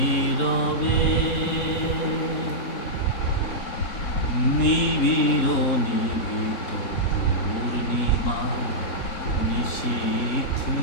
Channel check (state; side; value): late; right; 3.6 ms